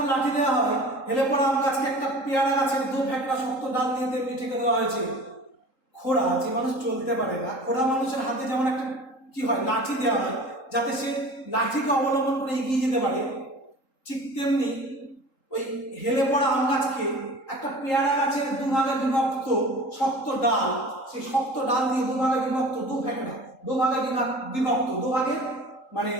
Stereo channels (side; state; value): right; late; 3.8 ms